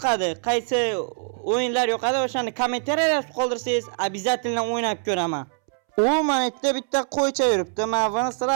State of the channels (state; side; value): silent; left; 63 dB below the other